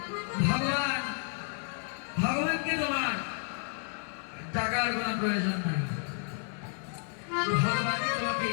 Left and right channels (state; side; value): silent; right; 57 dB below the other